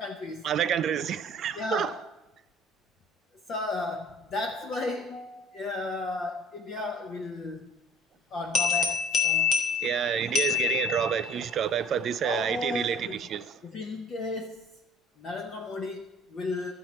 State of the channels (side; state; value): both; normal; correlation 0.51